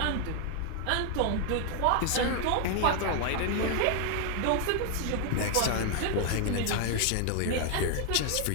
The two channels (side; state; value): both; different; correlation 0.00